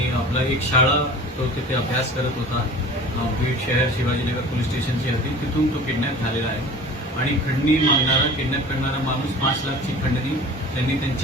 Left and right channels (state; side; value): normal; both; correlation 0.41